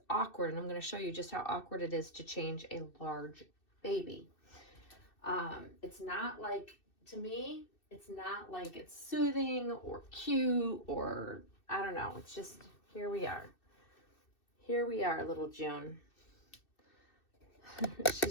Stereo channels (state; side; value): late; right; 2.6 ms